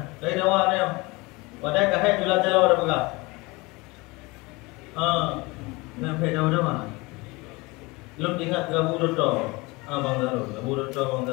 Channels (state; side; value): quieter; right; 24.4 dB